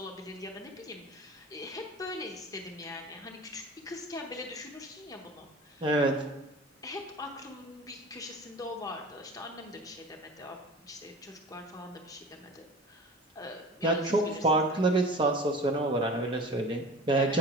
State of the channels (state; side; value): normal; both; correlation 0.38